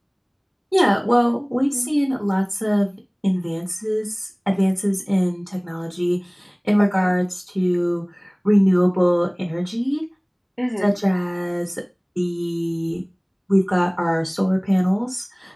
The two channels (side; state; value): both; identical; correlation 1.00